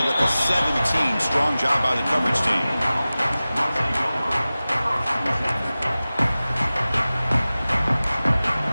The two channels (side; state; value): both; inverted; correlation -0.97